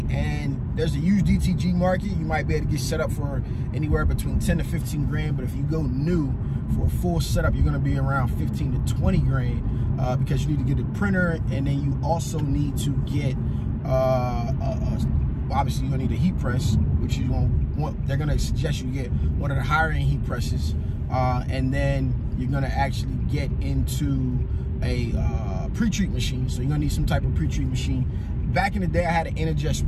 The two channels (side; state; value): both; identical; correlation 1.00